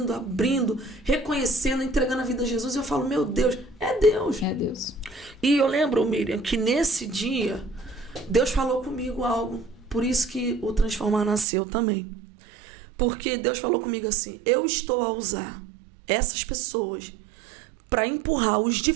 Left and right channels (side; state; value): left; drops out; at 11.5 s